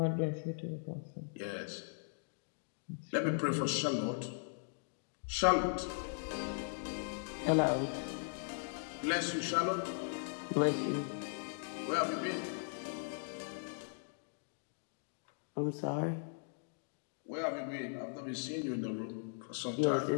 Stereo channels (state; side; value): silent; right; digital silence